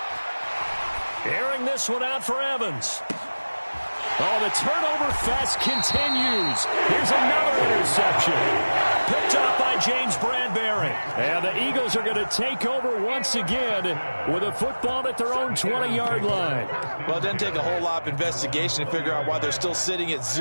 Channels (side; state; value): both; inverted; correlation -1.00